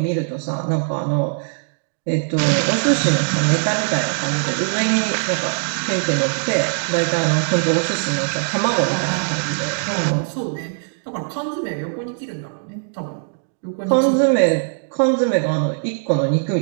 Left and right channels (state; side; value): silent; left; digital silence